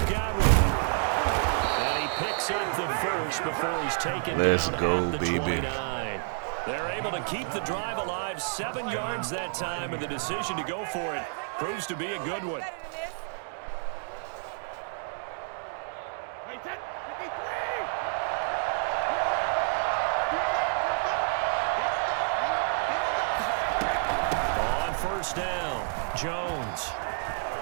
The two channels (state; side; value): silent; left; 58 dB below the other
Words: Godwin. And he picks up the first before he's taken Let's down go, at the baby. 29. They're able to keep the drive alive, 7 yards that time, and the decision to go for it proves to be a good one. On first down, Jones.